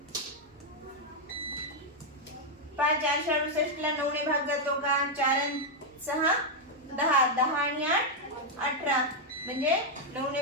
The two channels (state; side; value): normal; both; correlation -0.01